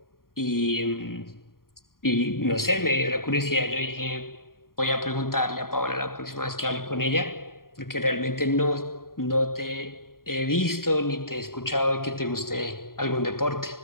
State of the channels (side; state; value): right; late; 0.92 ms